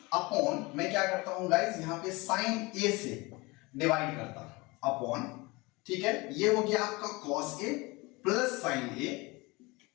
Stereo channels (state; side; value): quieter; right; 24.3 dB